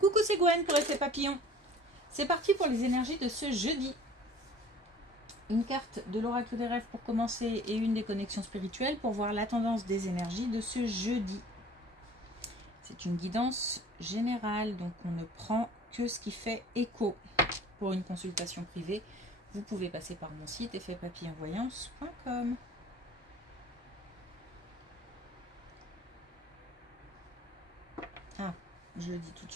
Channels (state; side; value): normal; both; correlation 0.48